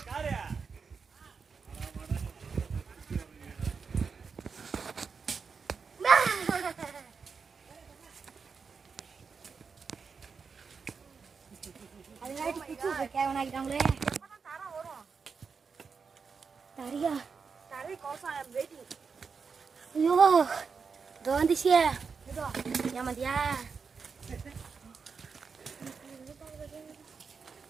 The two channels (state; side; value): quieter; left; 5.4 dB